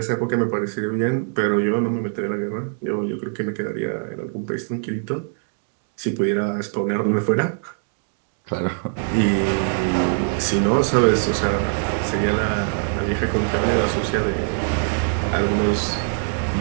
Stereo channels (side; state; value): left; silent; 64 dB below the other